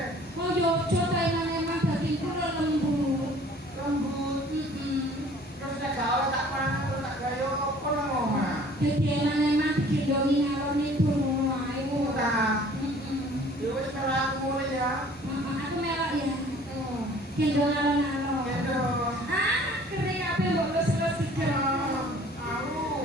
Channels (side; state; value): both; normal; correlation 0.52